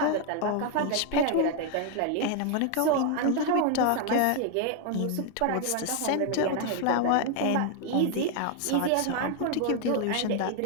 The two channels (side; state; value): both; different; correlation 0.01